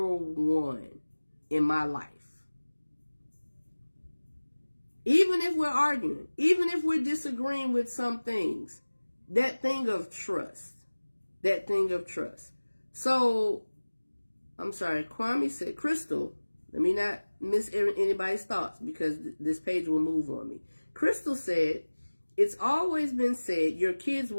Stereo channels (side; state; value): both; inverted; correlation -1.00